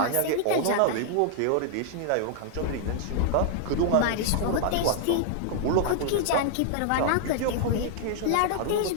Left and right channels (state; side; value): different; both; correlation -0.01